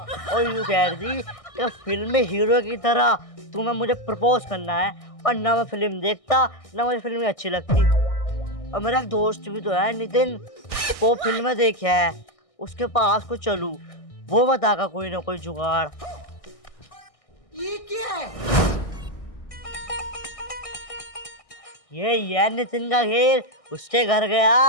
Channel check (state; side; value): late; right; 1.6 ms